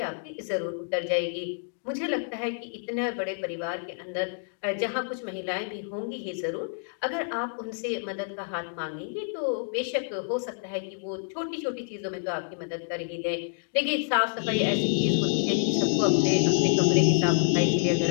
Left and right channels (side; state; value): right; silent; digital silence